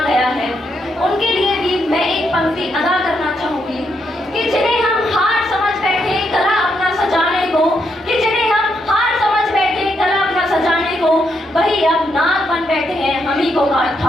गया है, उनके लिए भी मैं एक पंक्ति अदा करना चाहूंगी कि जिन्हें हम हार समझ बैठे गला अपना सजाने को, वही अब नाग बन बैठे हैं हम ही को काट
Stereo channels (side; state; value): both; normal; correlation 0.79